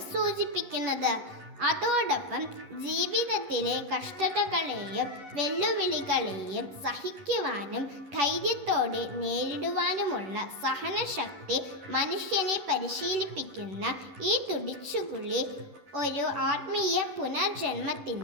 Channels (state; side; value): late; left; 10 ms